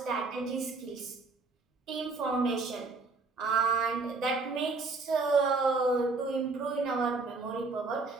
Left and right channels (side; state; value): left; quieter; 3.9 dB